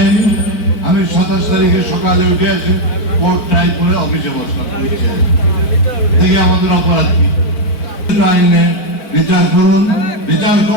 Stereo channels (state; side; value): late; right; 4.5 ms